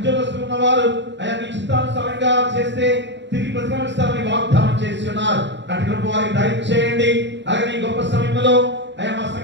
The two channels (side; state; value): left; late; 0.52 ms